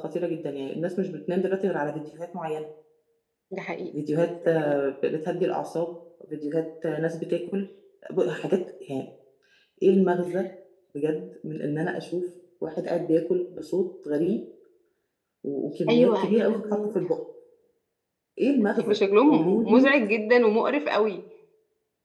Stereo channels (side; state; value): both; identical; correlation 1.00